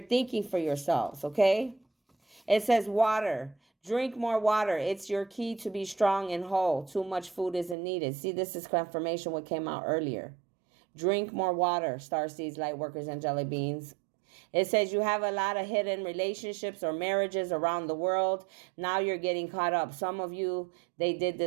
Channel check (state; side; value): drops out; left; at 7.8 s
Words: thinking for yourselves, okay? It says water. Drink more water. It's your key to be strong and whole. Too much food isn't needed. See, this is confirmation what came out earlier. Drink more water, starseeds, light workers, angelic beings. It says you have a lot of hidden relationships or marriages around the world. Now you're getting caught up. Some of you, they did